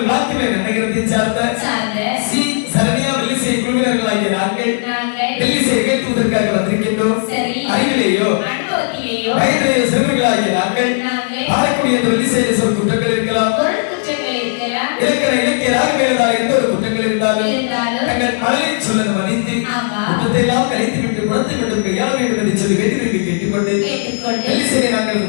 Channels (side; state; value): right; silent; digital silence